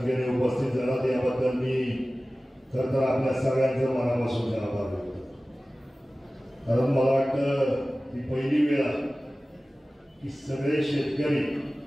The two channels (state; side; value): normal; both; correlation 0.97